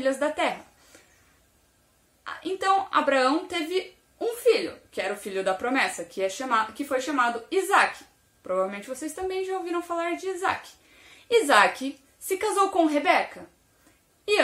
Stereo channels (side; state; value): both; identical; correlation 1.00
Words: da terra. Então, Abraão teve um filho, que era o filho da promessa, que foi chamado Isaac. Provavelmente vocês também já ouviram falar de Isaac. Isaac se casou com Rebeca e